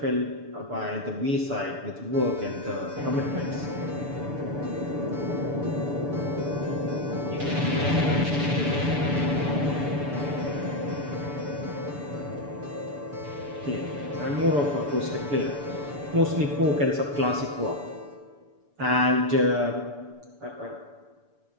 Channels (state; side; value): late; left; 6.9 ms